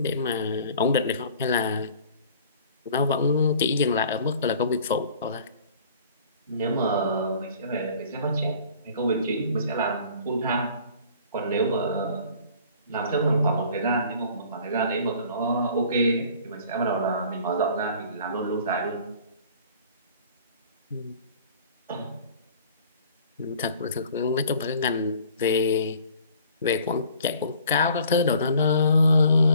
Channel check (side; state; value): both; inverted; correlation -0.51